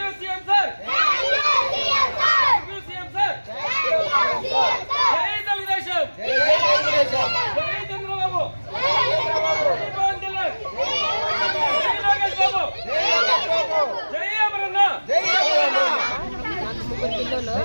CM sir thank you CM sir జై తెలుగుదేశం జై చంద్రబాబు జై పవన్ కళ్యాణ్ జై లోకేష్ బాబు జై అమరన్న ముగ్గురు పిల్లలు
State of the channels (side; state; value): both; inverted; correlation -1.00